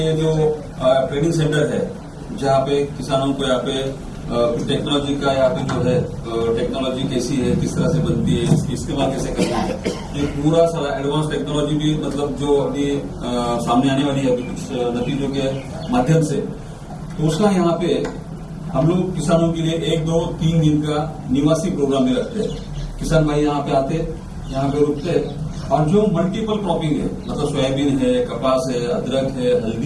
जो ट्रेनिंग सेंटर है, जहाँ पे किसानों को यहाँ पे टेक्नोलॉजी का यहाँ पे जो है टेक्नोलॉजी कैसी है, किस तरह से बनती है, इसकी इस्तेमाल कैसे करना है, ये पूरा सारा एडवांस टेक्नोलॉजी भी मतलब जो अभी सामने आने वाली है अभी कुछ नतीजों के माध्यम से, तो उसका यहाँ पे हम लोग किसानों के लिए 1, 2, 3 दिन का निवासी प्रोग्राम में रखते हैं। किसान भाई यहाँ पे आते, यहाँ पे रुकते, और जो मल्टीपल क्रॉपिंग है, मतलब सोयाबीन है, कपास है, अदरक है,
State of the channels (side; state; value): both; identical; correlation 1.00